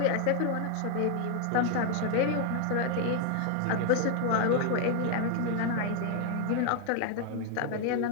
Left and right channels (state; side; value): different; both; correlation 0.00